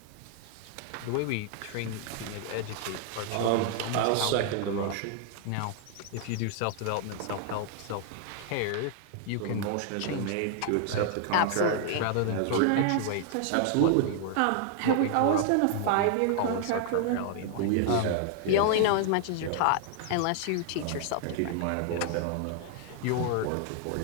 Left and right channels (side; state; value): both; different; correlation 0.00